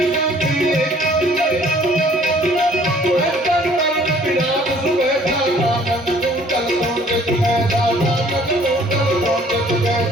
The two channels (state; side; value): normal; both; correlation 0.57